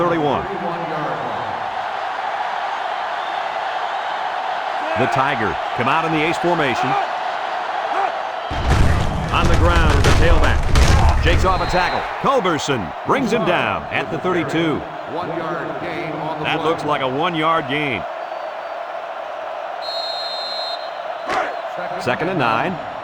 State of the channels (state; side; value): identical; both; correlation 1.00